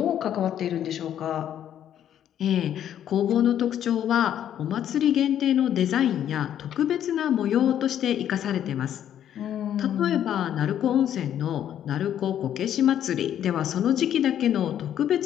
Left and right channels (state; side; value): quieter; right; 10.3 dB